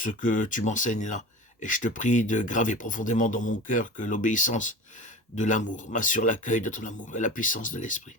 que tu m'enseignes là, et je te prie de graver profondément dans mon cœur que l'obéissance de l'amour m'assure l'accueil de ton amour et la puissance de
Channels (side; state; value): both; normal; correlation 0.33